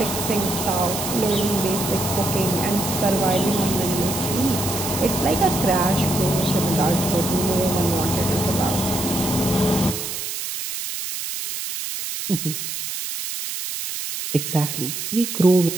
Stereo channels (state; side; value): noise; right; hiss, 5 dB below the sound